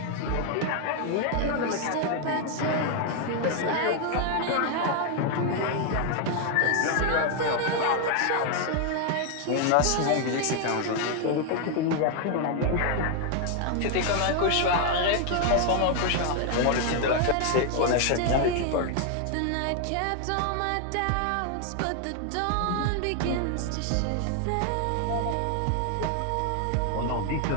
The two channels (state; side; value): different; both; correlation 0.00